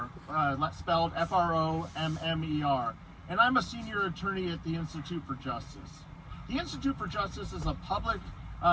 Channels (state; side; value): identical; both; correlation 1.00